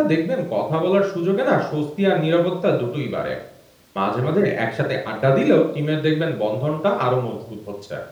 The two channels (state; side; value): identical; both; correlation 1.00